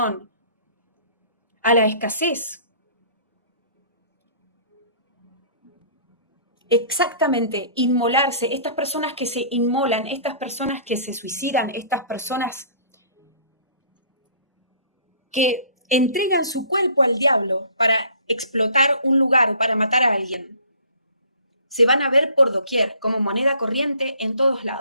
a la escasez. Exactamente, inmolarse, estas personas que se inmolan, estas personas que se suicidan, estas personas que entregan su cuerpo al diablo para explotar un lugar o para matar a alguien, se van a ver por doquier como moneda corriente en todos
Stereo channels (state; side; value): inverted; both; correlation -0.52